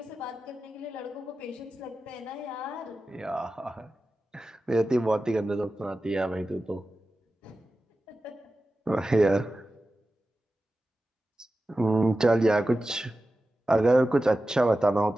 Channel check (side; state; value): both; normal; correlation 0.94